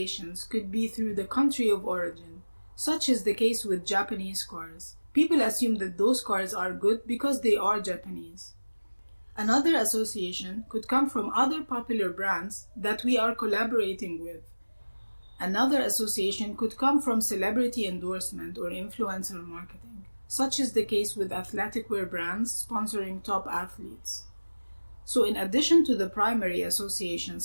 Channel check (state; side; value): inverted; both; correlation -1.00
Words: could be through the country of origin, such is the case with Japanese cars. People assume that those cars are good because they are Japanese. Another association could come from other popular brands that we are collaborating with. Another association could come from celebrity endorsement or influencer marketing, such is the case with athletic wear brands sponsoring top athletes. So in addition to the primary